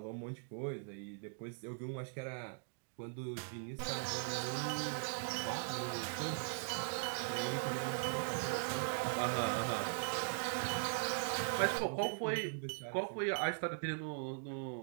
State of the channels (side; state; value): left; silent; digital silence